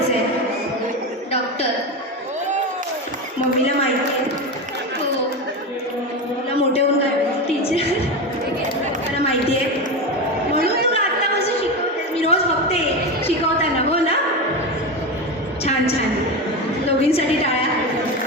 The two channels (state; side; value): normal; both; correlation 0.19